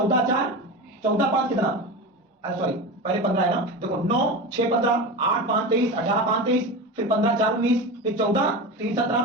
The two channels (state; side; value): normal; both; correlation 0.25